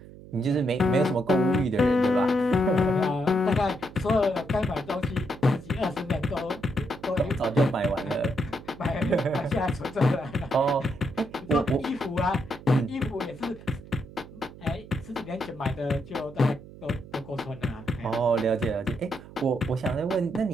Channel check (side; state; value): right; noise; hum, 18 dB below the sound